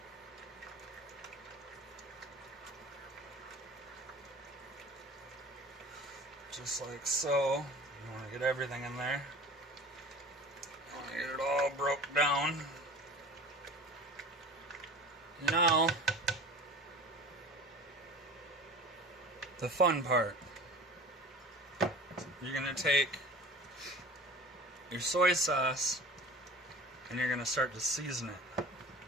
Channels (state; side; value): normal; both; correlation 0.39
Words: Just like so. You want to get everything in there. You want to get it all broke down. Now, the fun part. You're going to take your soy sauce and you're going to start to season it.